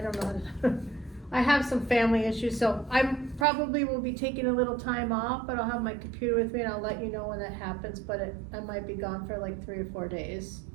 don't know, I have some family issues, so I'm probably will be taking a little time off, but I'll have my computer with me and I'll let you know when that happens, but I might be gone for like 3 or 4 days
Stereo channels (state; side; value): drops out; left; at 3.5 s